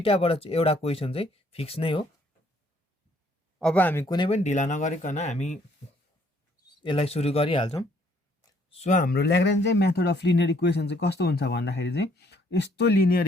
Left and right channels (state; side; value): normal; both; correlation 0.65